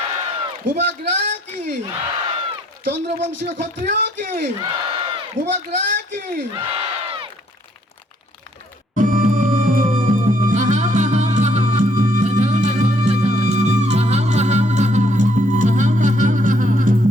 ভূভাগরা কি, চন্দ্রবংশীয় ক্ষত্রিয় কি, ভূভাগরা কি।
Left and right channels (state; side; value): normal; both; correlation 0.67